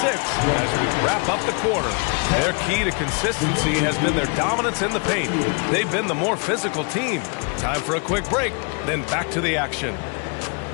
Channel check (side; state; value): right; quieter; 35.6 dB